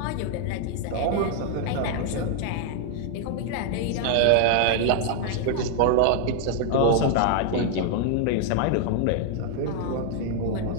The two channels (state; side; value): different; both; correlation 0.00